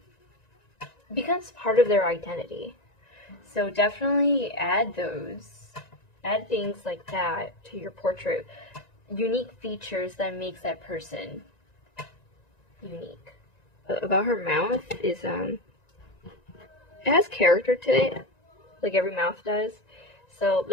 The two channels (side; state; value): right; late; 1.9 ms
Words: becomes part of their identity. So definitely add things like that to your portrait. Unique features that makes that person unique. About her mouth is, it has character to it, like every mouth does. So